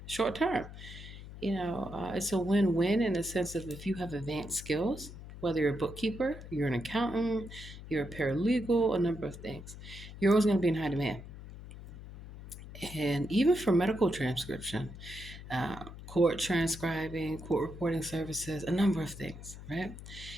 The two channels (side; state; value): left; noise; hum, 13 dB below the sound